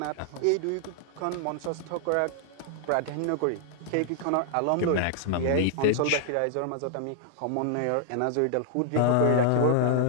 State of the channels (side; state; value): both; different; correlation -0.01